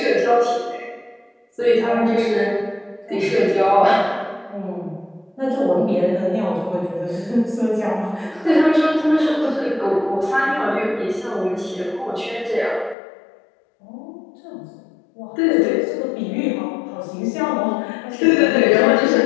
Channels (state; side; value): drops out; right; at 13.0 s